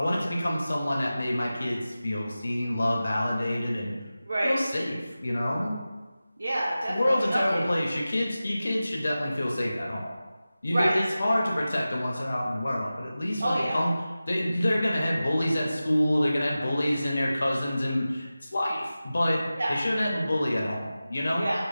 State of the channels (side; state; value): both; inverted; correlation -0.95